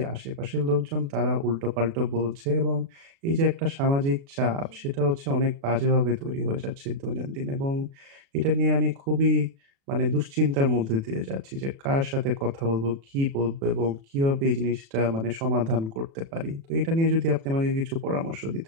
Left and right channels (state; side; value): late; left; 36 ms